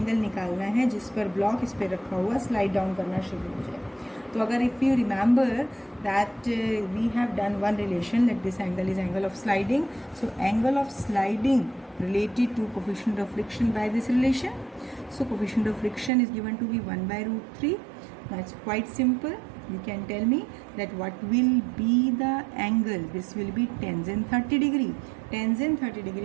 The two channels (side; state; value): left; drops out; at 16.1 s